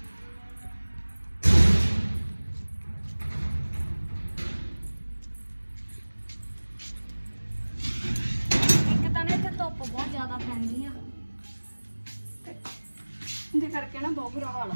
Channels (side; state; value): both; inverted; correlation -1.00